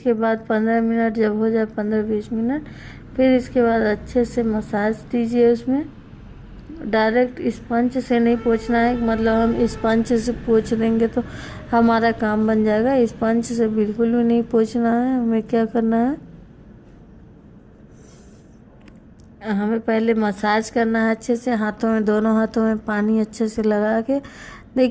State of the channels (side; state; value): both; identical; correlation 1.00